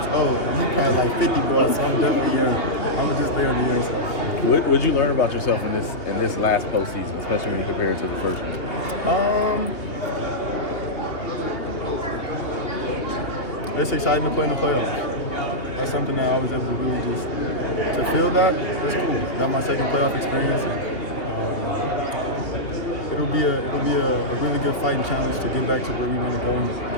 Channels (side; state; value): right; late; 2.8 ms